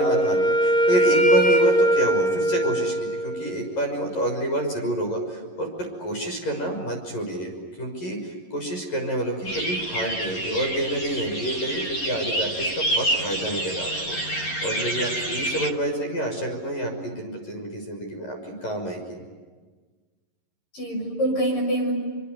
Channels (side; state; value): right; late; 11 ms